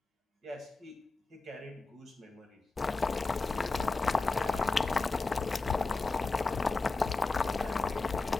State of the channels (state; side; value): quieter; right; 3.6 dB